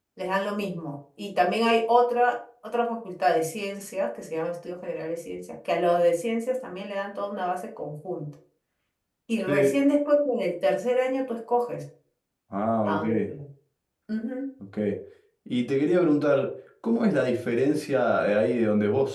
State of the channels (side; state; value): both; identical; correlation 1.00